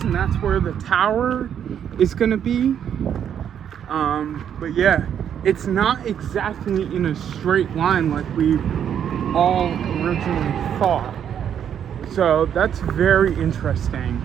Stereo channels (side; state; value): left; quieter; 8.9 dB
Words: and that's where the tower is going to be. But yeah, it's not exactly in a straight line like we all originally thought. So that's very interesting.